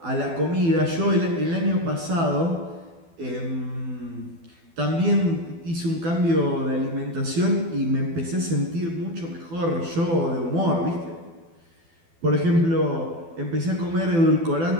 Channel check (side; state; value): left; late; 12 ms